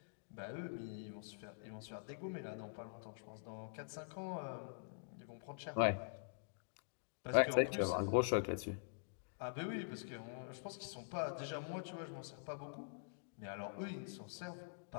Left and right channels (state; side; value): silent; right; digital silence